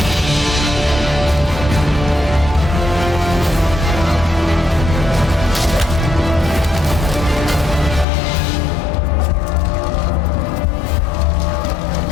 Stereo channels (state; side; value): drops out; right; at 8.1 s